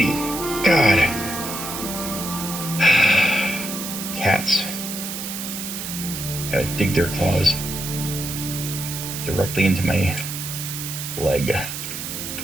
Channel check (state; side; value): noise; right; hiss, 6 dB below the sound